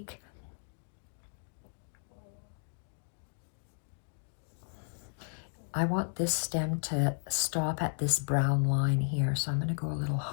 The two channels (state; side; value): silent; right; digital silence